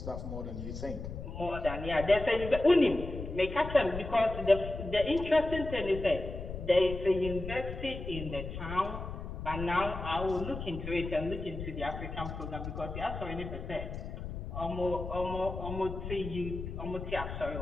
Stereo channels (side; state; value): left; noise; rumble, 7 dB below the sound